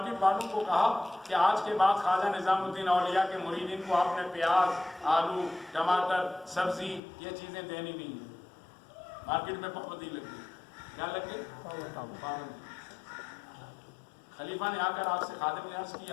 والوں کو کہا کہ آج کے بعد خواجہ نظام الدین اولیاء کے مریدین کو آپ نے پیاز، آلو، ٹماٹر، سبزی یہ چیزیں دینی نہیں ہیں. مارکیٹ میں پابندی لگ گئی. کیا لگ گئی؟ پابندی. خلیفہ نے آ کر آپ سے خادم نے عرض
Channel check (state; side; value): drops out; right; at 7.0 s